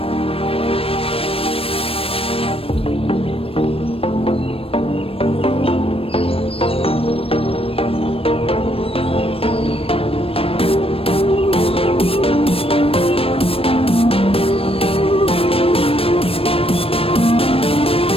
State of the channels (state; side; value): late; right; 0.28 ms